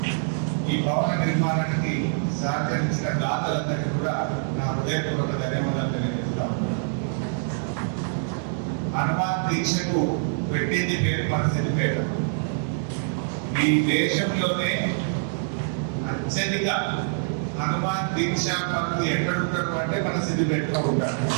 ఈ భవన నిర్మాణానికి సహకరించిన దాతలందరికీ కూడా నా హృదయపూర్వక ధన్యవాదాలు తెలియజేస్తాను. హనుమాన్ దీక్షకు పెట్టింది పేరు మన సిద్దిపేట. ఈ దేశంలోనే అత్యధిక హనుమాన్ దీక్షా పనులు ఎక్కడుంటారు అంటే మన సిద్దిపేటలో ఉంటారు.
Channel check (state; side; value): silent; left; 61 dB below the other